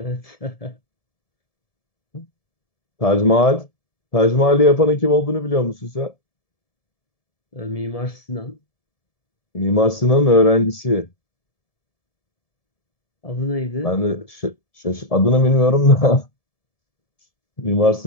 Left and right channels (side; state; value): right; late; 1.7 ms